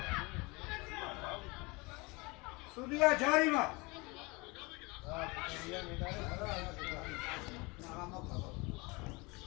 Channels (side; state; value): right; quieter; 26.3 dB